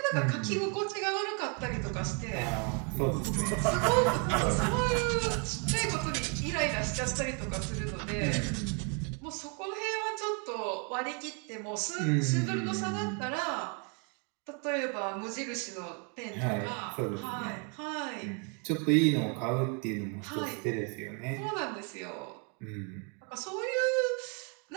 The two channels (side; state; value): left; quieter; 36.2 dB